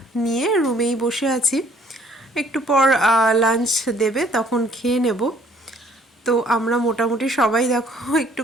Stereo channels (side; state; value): both; normal; correlation 0.59